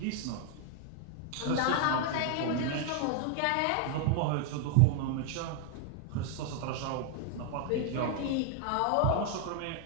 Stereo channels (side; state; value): both; different; correlation 0.00